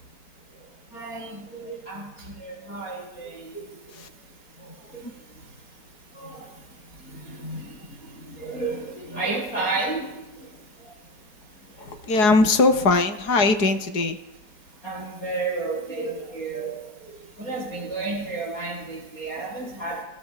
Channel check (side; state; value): right; late; 4.8 ms